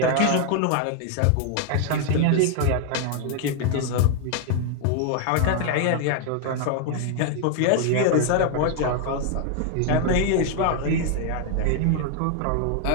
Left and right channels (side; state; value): both; different; correlation 0.00